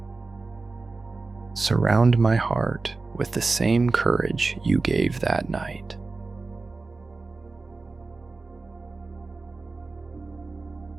Surround my heart with the same courage you gave that night.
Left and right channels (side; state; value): left; quieter; 3.7 dB